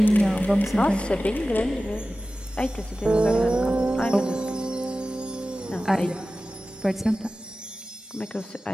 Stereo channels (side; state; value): both; normal; correlation 0.95